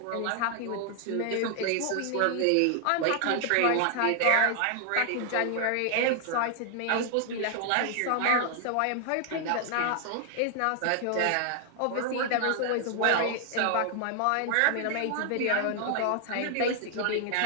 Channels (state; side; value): different; both; correlation 0.00